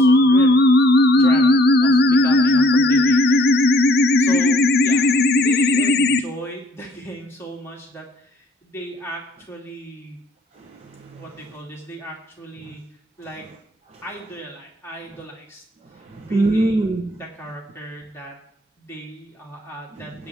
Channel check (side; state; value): both; normal; correlation 0.61